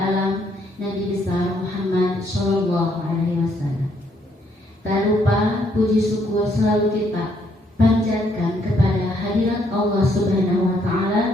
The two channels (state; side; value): normal; both; correlation 0.70